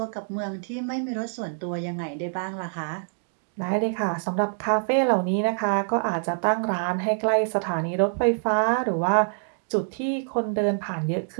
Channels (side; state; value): left; silent; digital silence